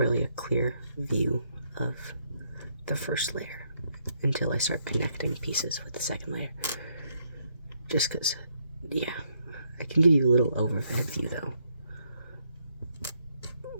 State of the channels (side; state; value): both; inverted; correlation -0.74